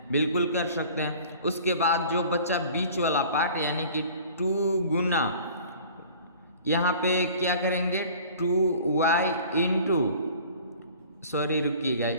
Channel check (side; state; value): both; inverted; correlation -0.46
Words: बिल्कुल कर सकते हैं। उसके बाद जो बच्चा बीच वाला पार्ट यानी कि 2 गुना यहाँ पे क्या करेंगे, 2y इंटू, सॉरी रुकिएगा,